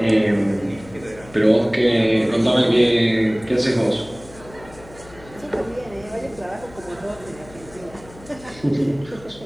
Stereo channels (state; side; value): noise; left; hum, 21 dB below the sound